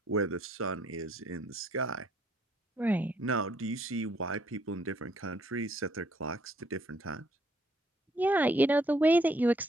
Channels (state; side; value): normal; both; correlation 0.67